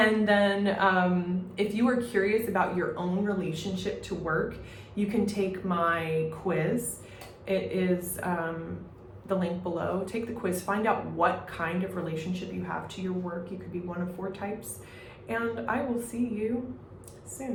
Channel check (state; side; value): identical; both; correlation 1.00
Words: then if you are curious about your own relationship to work, you can take my quiz. It is the link below. Take the quiz, find out what kind of relationship you have to your work. You could be one of 4 types. And I will see you